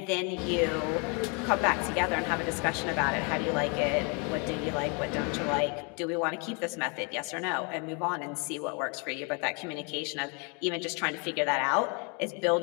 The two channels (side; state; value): right; quieter; 33.5 dB